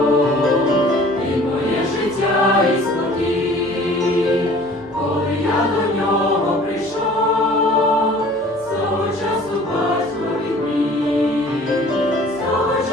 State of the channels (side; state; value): both; normal; correlation 0.49